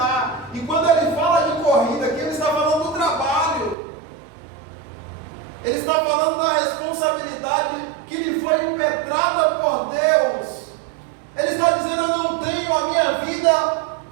E quando ele fala de corrida aqui, ele está falando do trabalho, ele está falando da responsabilidade que lhe foi impetrada por Deus. Ele está dizendo: eu não tenho a minha vida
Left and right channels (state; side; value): drops out; left; at 3.8 s